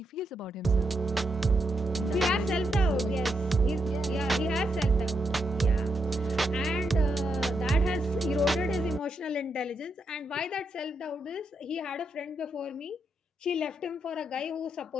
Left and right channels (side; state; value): both; normal; correlation 0.81